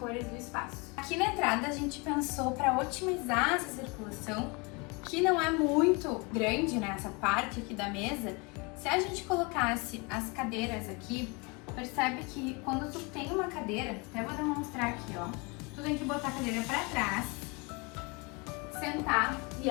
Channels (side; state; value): right; quieter; 29.1 dB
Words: do espaço. Aqui na entrada a gente pensou para otimizar essa circulação, que não é muito grande, né? Essa parte aqui da mesa. Se a gente colocasse as cadeiras aqui, percebe que quando tu tem uma cadeira, até vou demonstrar aqui, ó, tu tem que botar a cadeira pra trás, sentar e